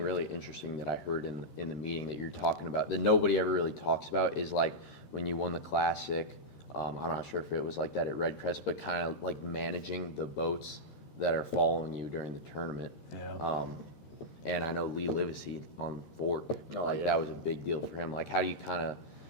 interesting that I heard in the meeting that you're talking about that nobody ever really talks about is like when you won the Classic. I'm not sure if it was like that at Red Crest, but kind of like managing the boats that are following you during the tournament. Yeah. And I know Lee Livesey on Fort, that was a big deal for him. Like, how do you kind of,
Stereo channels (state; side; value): late; right; 13 ms